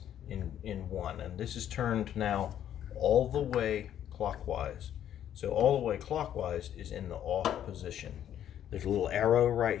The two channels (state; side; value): quieter; right; 10.5 dB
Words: in one, and this is turned now all the way clockwise. So all the way clockwise is in the off position. There's a little arrow